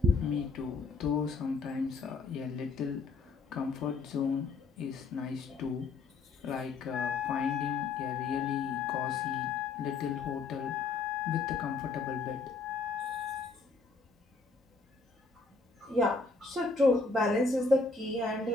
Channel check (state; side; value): quieter; right; 4.1 dB